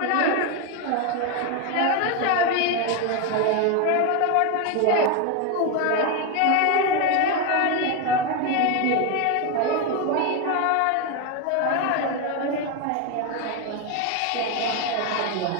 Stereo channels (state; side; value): different; both; correlation 0.02